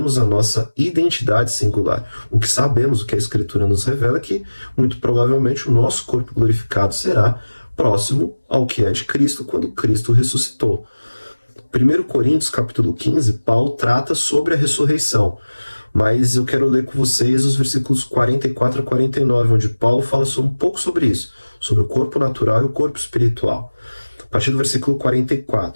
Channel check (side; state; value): both; inverted; correlation -1.00